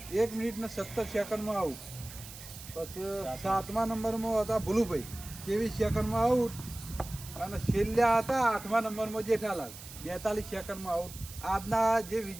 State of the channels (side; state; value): right; noise; hiss, 14 dB below the sound